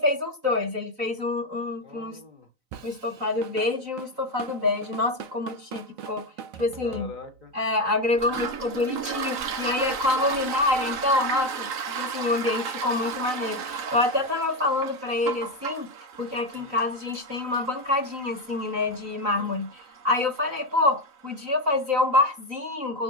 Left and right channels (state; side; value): late; left; 3.9 ms